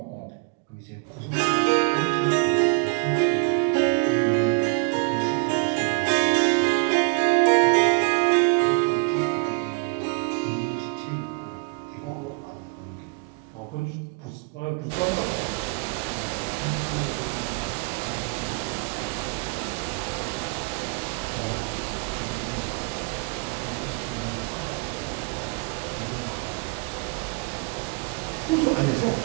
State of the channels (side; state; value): left; quieter; 34.8 dB